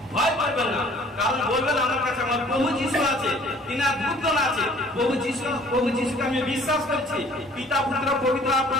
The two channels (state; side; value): normal; both; correlation 0.53